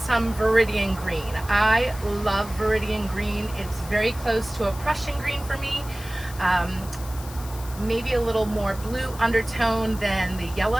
Viridian green. I love Viridian green. It's very close to a Prussian green for me. Maybe a little more blue undertone than the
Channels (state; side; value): noise; left; hiss, 16 dB below the sound